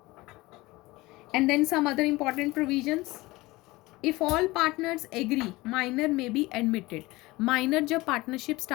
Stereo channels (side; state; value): right; quieter; 20.7 dB